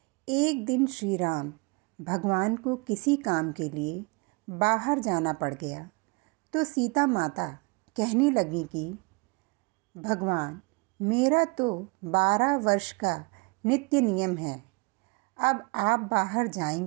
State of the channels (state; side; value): quieter; left; 29.2 dB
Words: एक दिन श्री राम भगवान को किसी काम के लिए बाहर जाना पड़ गया तो सीता माता कहने लगी कि भगवान, मेरा तो 12 वर्ष का नित्य नियम है। अब आप बाहर